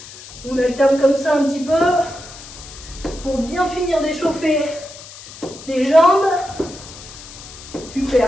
On alterne comme ça un petit peu. Pour bien finir d'échauffer les jambes.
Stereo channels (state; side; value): noise; left; hiss, 16 dB below the sound